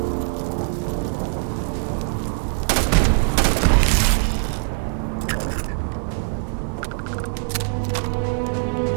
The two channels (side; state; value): left; silent; digital silence